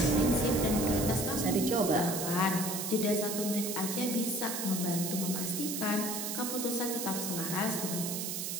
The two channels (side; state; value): right; noise; hiss, 3 dB below the sound